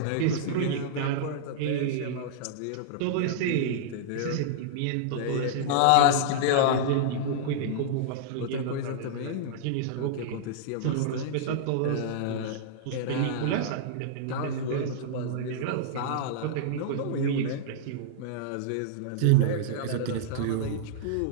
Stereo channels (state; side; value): different; both; correlation -0.02